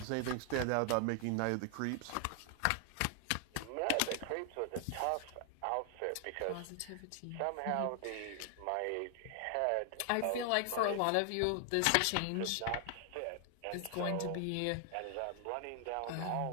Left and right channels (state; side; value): different; both; correlation 0.00